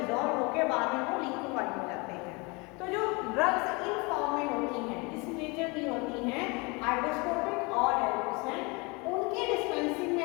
होकर बाद में वो लिक्विफाइड हो जाते हैं। तो जो ड्रग्स इन फॉर्म में होती हैं, इस नेचर की होती हैं, हाइड्रोस्कोपिक और डेलिक्वेसेंट, उनकी डिस्पेंसिंग में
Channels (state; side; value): quieter; right; 27.9 dB